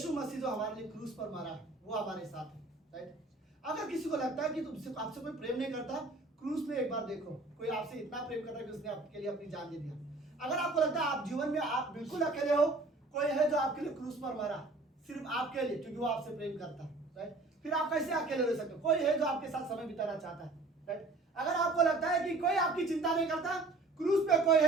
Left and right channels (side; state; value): left; quieter; 3.2 dB